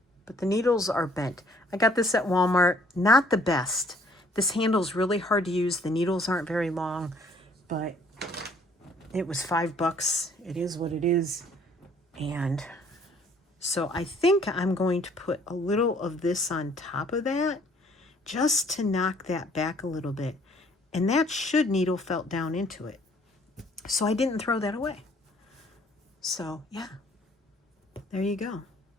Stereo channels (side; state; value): both; normal; correlation 0.60